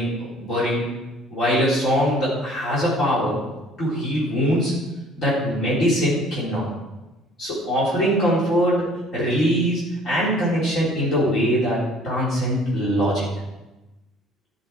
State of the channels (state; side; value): normal; both; correlation 0.54